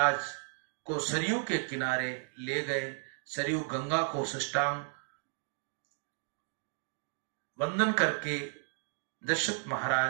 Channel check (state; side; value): silent; left; 55 dB below the other